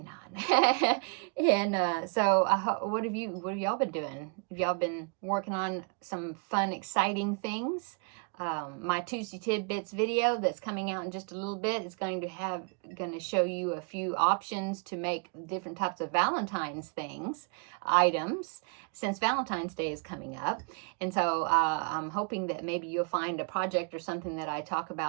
on. And so what have y'all been doing? Have y'all been working on some fun, exciting things? My Tuesday Tidbits video that's coming out in just a little bit is going to show you a few options to make different types of Valentine's items, since Valentine's Day is coming up. And so I'm hoping that maybe you'll find a project or something that I talk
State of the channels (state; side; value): quieter; left; 34.9 dB